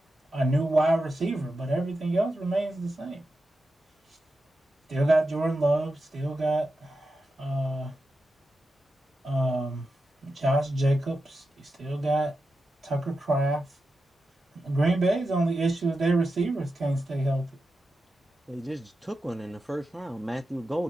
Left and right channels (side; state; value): both; normal; correlation 0.90